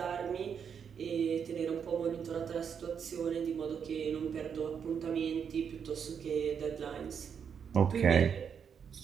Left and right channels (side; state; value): left; quieter; 7.2 dB